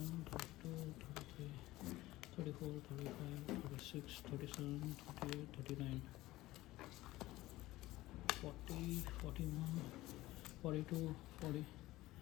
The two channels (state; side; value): quieter; right; 17.5 dB